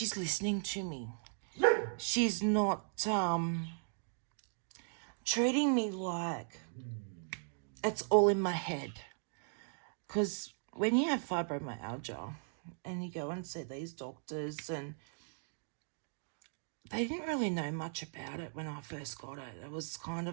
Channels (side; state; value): left; silent; digital silence